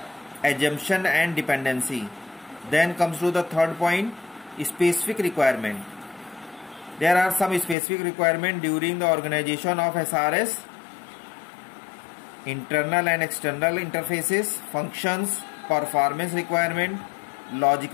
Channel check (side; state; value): right; drops out; at 7.8 s